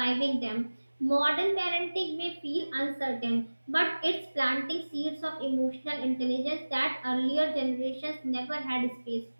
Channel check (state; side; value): inverted; both; correlation -1.00